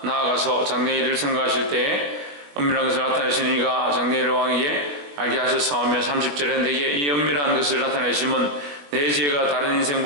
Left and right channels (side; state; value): left; late; 21 ms